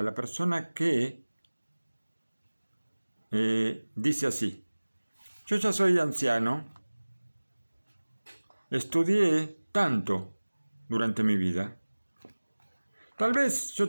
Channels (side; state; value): both; inverted; correlation -1.00